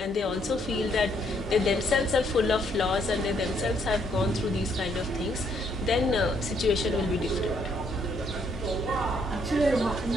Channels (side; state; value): both; normal; correlation 0.70